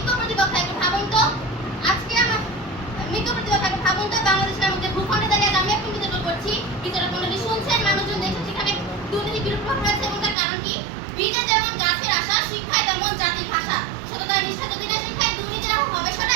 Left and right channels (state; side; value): drops out; left; at 10.4 s